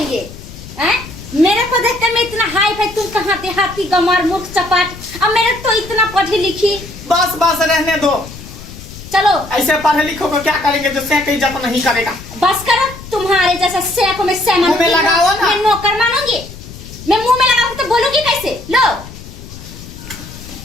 हैं? मेरे को देखते मैं इतना हाई फाई तुम कहाँ देहाती गमार मूर्ख चपाट अब मेरे तो इतना पढ़ी लिखी। बस बस रहने दो चलो ऐसे पढ़े लिखो को क्या करेंगे जो से इज्जत नहीं करेगा। बस करो तुम्हारे जैसा से को मैं से मुंह में लगाओ ना। मैं नौकर मानूंगी मैं मुंह में लगाऊंगी तो बोलूंगी कैसे? लो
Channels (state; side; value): noise; left; rumble, 15 dB below the sound